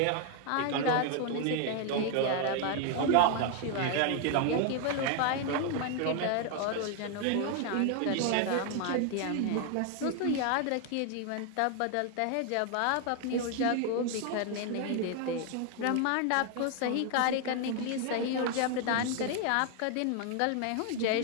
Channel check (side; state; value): both; different; correlation 0.01